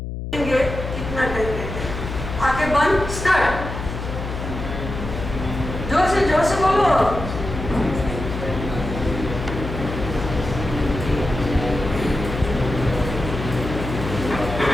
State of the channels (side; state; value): left; noise; hum, 6 dB below the sound